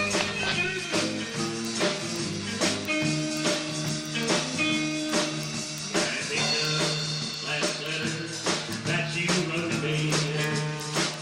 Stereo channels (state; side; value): identical; both; correlation 1.00